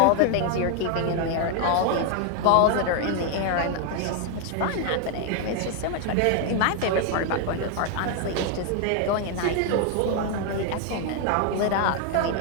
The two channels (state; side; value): different; both; correlation 0.01